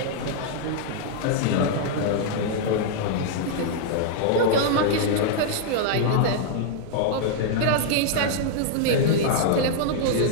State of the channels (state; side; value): different; both; correlation -0.01